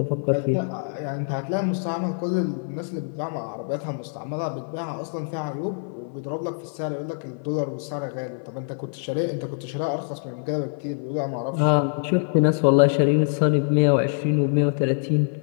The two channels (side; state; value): right; silent; 57 dB below the other